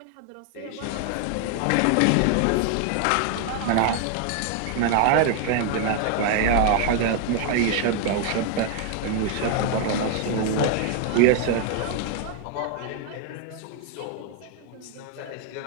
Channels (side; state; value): both; different; correlation 0.00